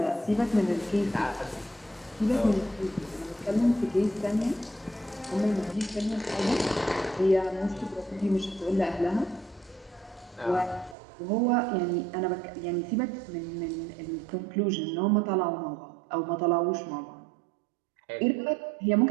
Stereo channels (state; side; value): drops out; left; at 11.0 s